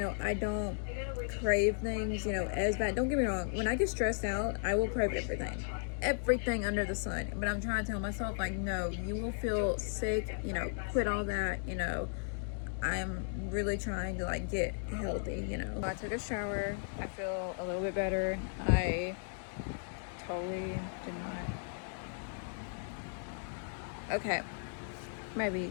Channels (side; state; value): right; silent; digital silence